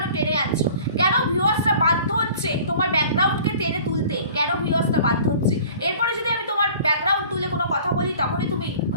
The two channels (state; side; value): inverted; both; correlation -0.47